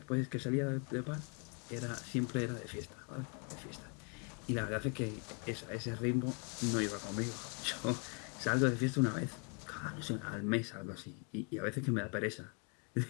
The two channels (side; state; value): right; quieter; 37.3 dB